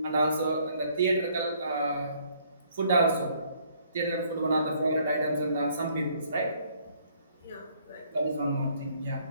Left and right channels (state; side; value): inverted; both; correlation -0.64